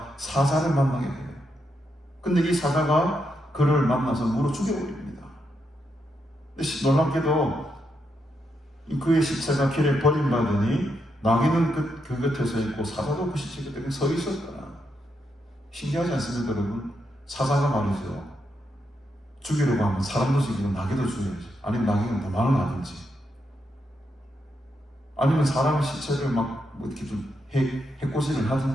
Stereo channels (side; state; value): both; normal; correlation 0.81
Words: 사자를 만나게 돼요. 근데 이 사자가 그를 만나서 물어 죽여버립니다. 근데 놀랍게도 그의 시체가 길에 버림받으니 나귀는 그 곁에 서 있고 사자도 그 시체 곁에 서 있었다. 신기하지 않습니까 여러분? 사자가 말이죠. 죽이려고 하면 사람도 죽이고 나귀도 죽여야지. 아니면 나귀는 도망을 가든지. 아니면 사람의 시체를 막 이렇게 좀 해코지를